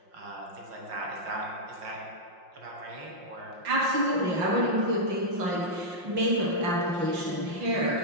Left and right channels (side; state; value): left; late; 5.6 ms